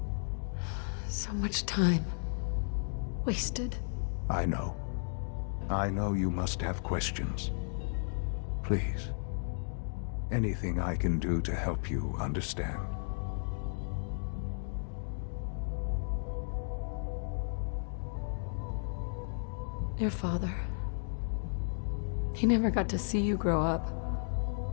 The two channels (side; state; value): right; silent; digital silence